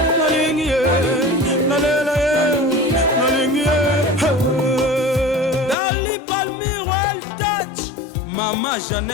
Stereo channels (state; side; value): drops out; right; at 5.8 s